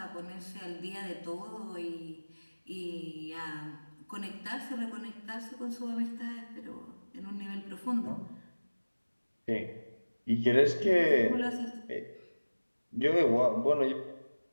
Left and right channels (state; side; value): inverted; both; correlation -1.00